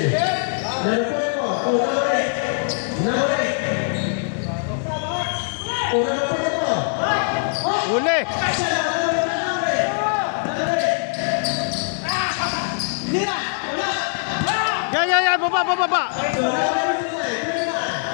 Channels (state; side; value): silent; right; digital silence